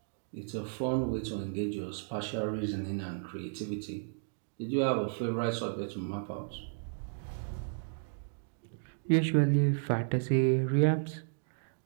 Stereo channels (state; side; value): silent; left; digital silence